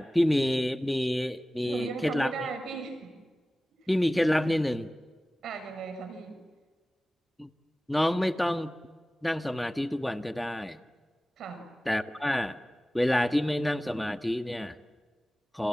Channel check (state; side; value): normal; both; correlation 0.97